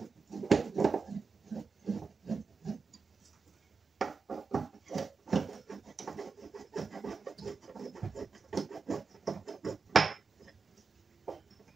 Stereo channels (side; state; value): left; quieter; 4.8 dB